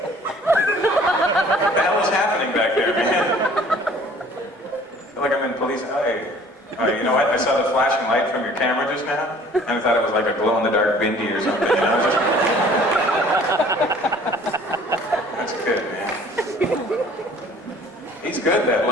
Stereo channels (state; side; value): normal; both; correlation 0.52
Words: What the hell is happening back there, man? I feel like I'm in police. You know what? I saw the flashing light from your camera just now, and I thought it was like a glow-in-the-dark bindi or something. You know? That's good, man. He's good, that